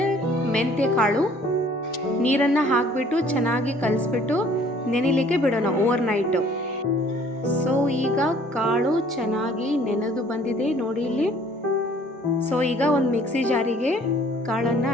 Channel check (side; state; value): both; normal; correlation 0.56